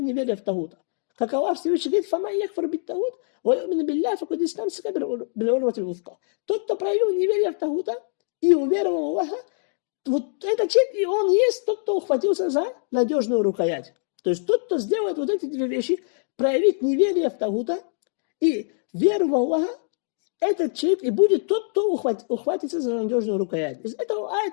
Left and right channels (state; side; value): silent; right; digital silence